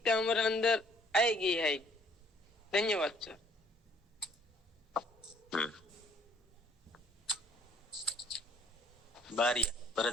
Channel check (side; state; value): both; normal; correlation 0.61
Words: हमारे अंदर आएगी है। धन्यवाद सर। बारिया